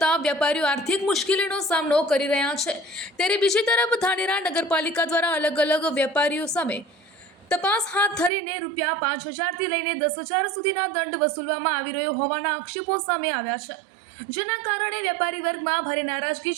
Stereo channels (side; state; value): left; drops out; at 8.3 s